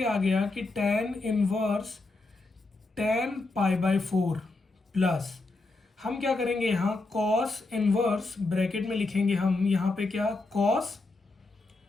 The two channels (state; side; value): quieter; right; 3.3 dB